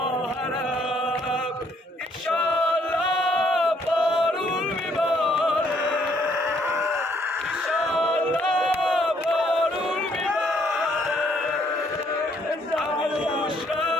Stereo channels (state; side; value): normal; both; correlation 0.68